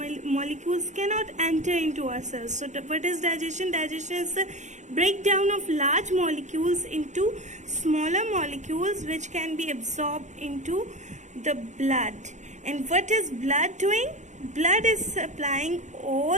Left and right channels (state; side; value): late; left; 0.34 ms